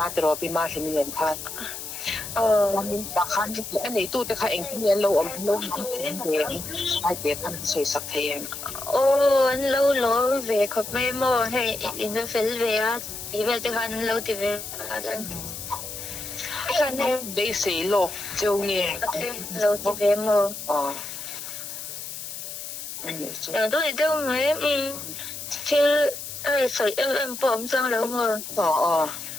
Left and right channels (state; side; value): noise; left; hiss, 8 dB below the sound